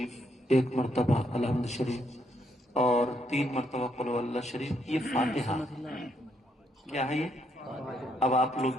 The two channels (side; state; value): both; normal; correlation 0.75